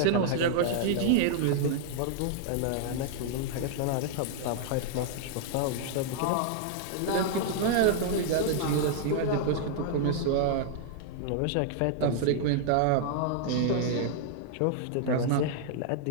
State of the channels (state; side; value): different; both; correlation -0.01